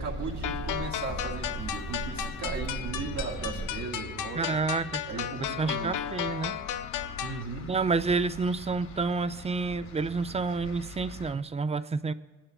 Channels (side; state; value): both; normal; correlation 0.37